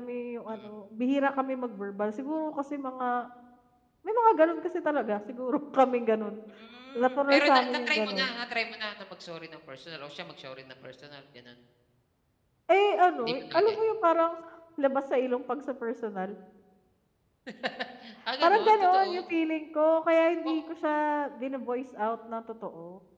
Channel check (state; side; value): identical; both; correlation 1.00